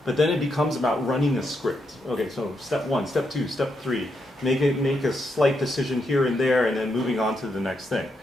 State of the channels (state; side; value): normal; both; correlation 0.81